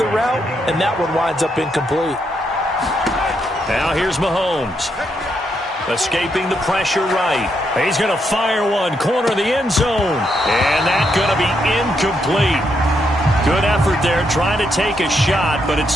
route, and that one winds up incomplete. Now here's Mahomes. Escaping the pressure right. He's going to fire one. Corner of the end zone. And that's going to be incomplete. Good effort there trying to take a shot, but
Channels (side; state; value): both; normal; correlation 0.79